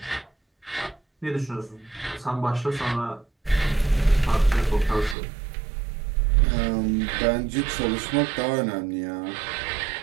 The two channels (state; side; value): drops out; left; at 5.2 s